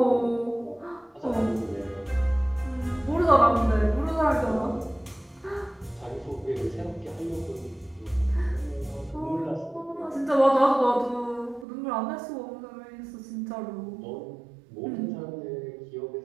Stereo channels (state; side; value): drops out; left; at 11.7 s